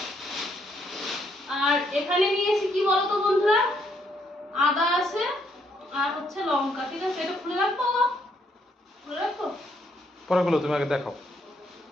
আর এখানে নিয়েছি কি বলতো বন্ধুরা, আদা আছে আর হচ্ছে লঙ্কা। ঠিক আছে, এটা খুলে রাখবো, খুলে রাখবো পরে গুলো তুমি আগে দেখাও।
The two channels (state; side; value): normal; both; correlation 0.72